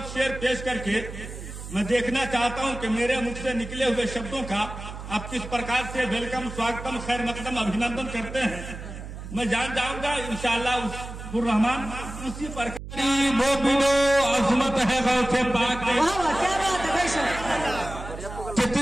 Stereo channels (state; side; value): noise; right; hum, 10 dB below the sound